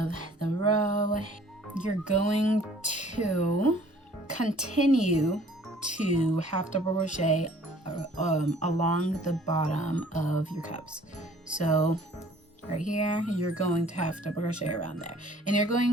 the row, you're going to continue to half double crochet along the bottom of your cups. So right here, you're going to half double crochet around there, and you're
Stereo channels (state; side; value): normal; both; correlation 0.54